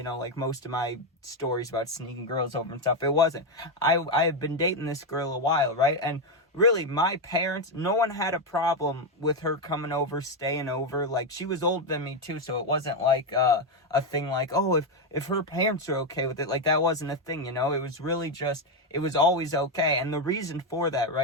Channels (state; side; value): normal; both; correlation 0.07